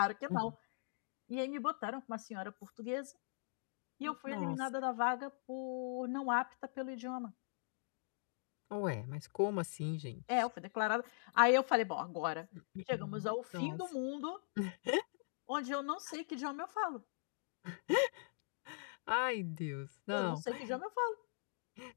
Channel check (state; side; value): silent; right; digital silence